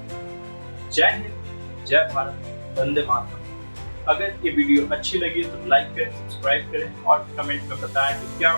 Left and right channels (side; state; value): both; inverted; correlation -1.00